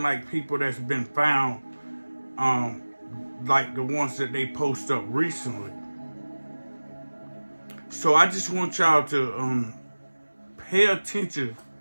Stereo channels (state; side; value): inverted; both; correlation -1.00